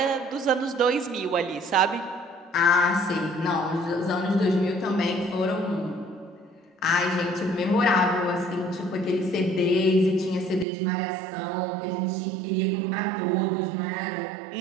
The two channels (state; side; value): drops out; left; at 10.7 s